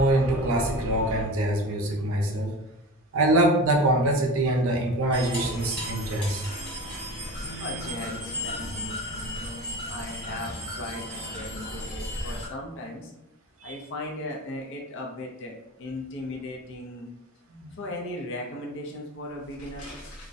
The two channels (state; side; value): normal; both; correlation 0.32